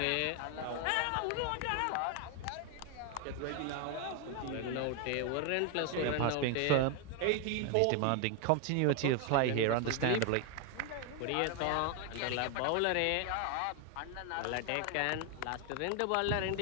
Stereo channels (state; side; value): different; both; correlation 0.01